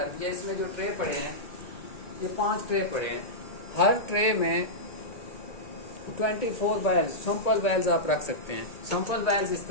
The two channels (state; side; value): late; right; 1.8 ms